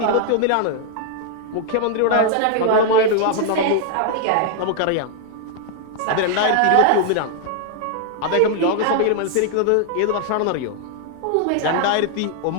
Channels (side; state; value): both; different; correlation 0.00